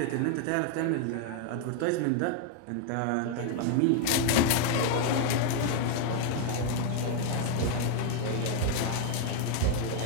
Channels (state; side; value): different; both; correlation 0.00